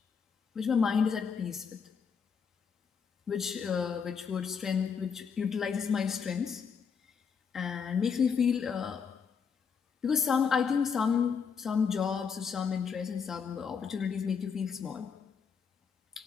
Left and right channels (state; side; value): quieter; right; 6.3 dB